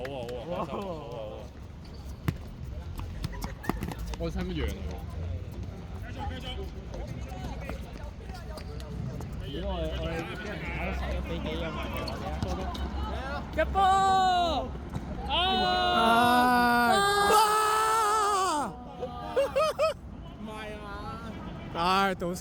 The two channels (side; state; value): both; identical; correlation 1.00